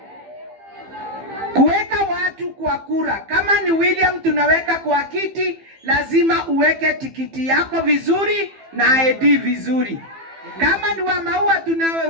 Kuweka watu kwa kura. Kama ni William tunaweka kwa kiti, lazima uweke tikiti yako vizuri na ID vizuri. Kama ni wa Maua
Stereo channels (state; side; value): late; left; 15 ms